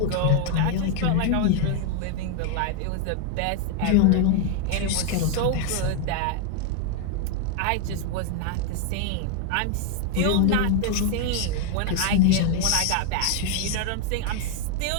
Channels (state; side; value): different; both; correlation 0.01